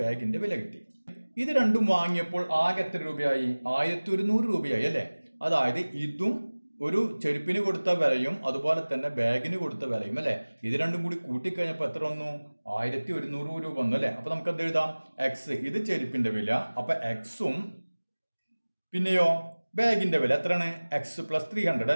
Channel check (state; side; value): inverted; both; correlation -1.00